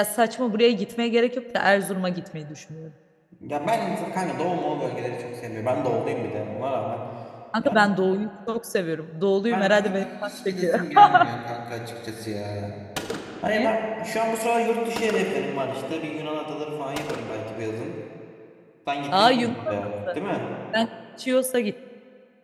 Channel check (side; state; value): both; identical; correlation 1.00